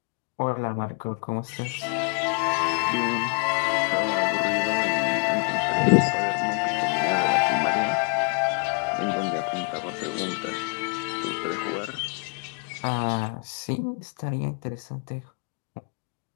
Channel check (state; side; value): quieter; right; 39.5 dB